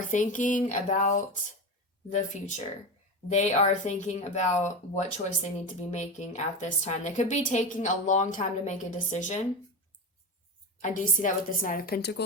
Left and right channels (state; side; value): normal; both; correlation 0.21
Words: thinking about the future. They are thinking about what choice they need to be making at this time. They could be taking a long time to make a decision. I do see that with this Knight of